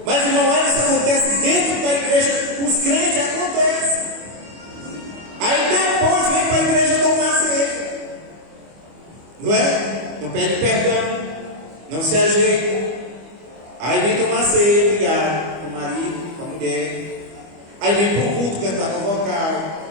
Mas, irmão, isso acontece dentro da igreja, os crentes acontece. Aí depois vem para a igreja tomar ceia, não é? Não pede perdão, não se ajeita. Aí vem tomar ceia, brigar com o marido, com a mulher. Aí vem para o culto cantar no vocal.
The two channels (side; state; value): left; late; 25 ms